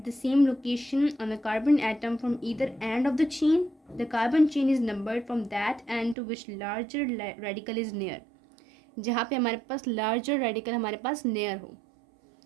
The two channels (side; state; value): left; drops out; at 6.2 s